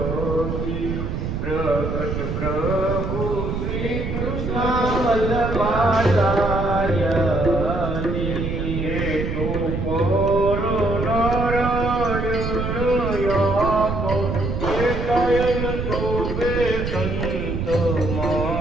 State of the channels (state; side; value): noise; right; rumble, 3 dB below the sound